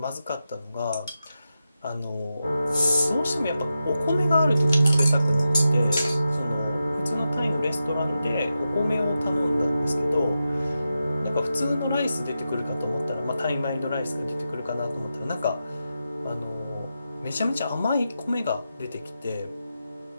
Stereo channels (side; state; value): both; inverted; correlation -0.89